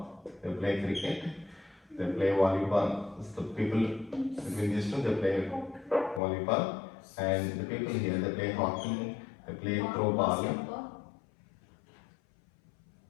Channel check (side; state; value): right; drops out; at 6.2 s